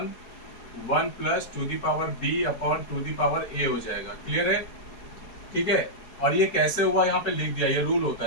1 plus 2 the power b upon 2 the power a हो जाएगा। क्लियर है? ठीक है, और ये कैसे हुआ यहाँ पे लिख दिया, ये रूल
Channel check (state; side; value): late; right; 4.7 ms